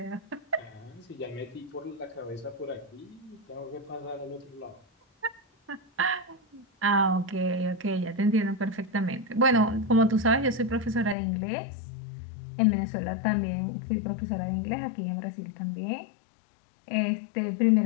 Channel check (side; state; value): right; drops out; at 11.2 s